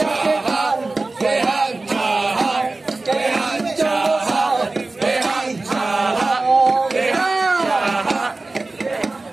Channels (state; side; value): quieter; left; 3.3 dB